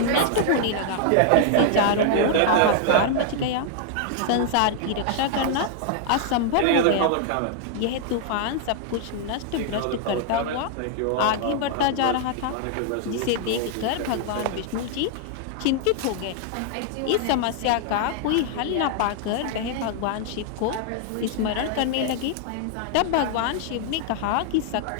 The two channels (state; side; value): different; both; correlation 0.00